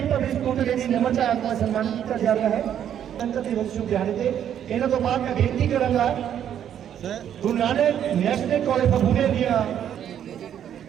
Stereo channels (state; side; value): quieter; left; 9.8 dB